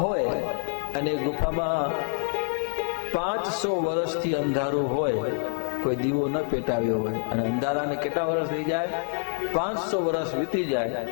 હોય અને ગુફામાં 500 વર્ષથી અંધારું હોય, કોઈ દીવો ન પેટાવ્યો હોય, અને અંધારાને કેટલા વર્ષ થઈ જાય? 500 વર્ષ વીતી જાય.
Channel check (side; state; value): right; silent; digital silence